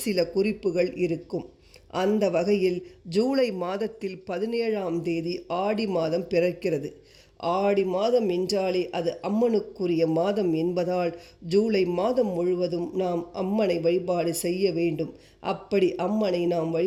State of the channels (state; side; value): identical; both; correlation 1.00